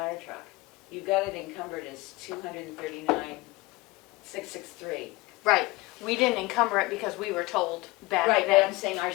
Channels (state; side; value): quieter; right; 21.9 dB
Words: truck. You got it encumbered as $239,663. Right, we didn't encumber it because we were told back Right, but I'm then. saying our